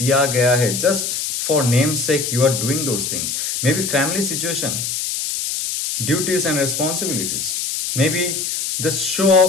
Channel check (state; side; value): noise; left; hiss, 3 dB below the sound